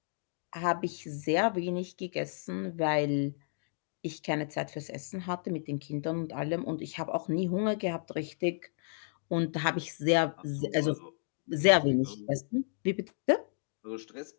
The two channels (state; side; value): silent; right; digital silence